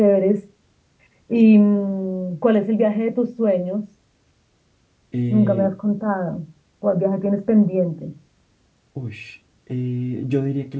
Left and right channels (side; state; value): both; identical; correlation 1.00